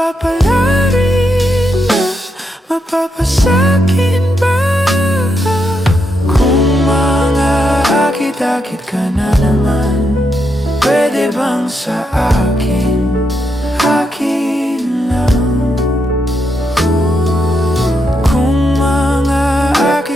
na mapapasakin ba? Kung mga akit-akit ka na naman, pwede bang sa akin, akin lang? Kung mga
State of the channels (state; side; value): normal; both; correlation 0.81